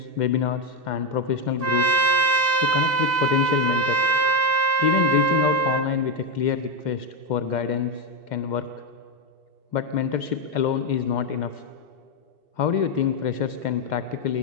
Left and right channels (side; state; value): left; late; 2.7 ms